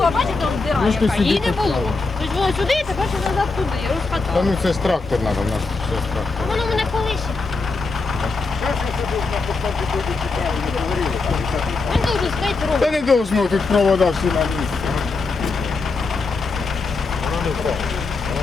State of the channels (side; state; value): right; quieter; 3.9 dB